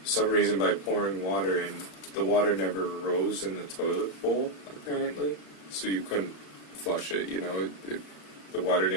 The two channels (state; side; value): late; right; 35 ms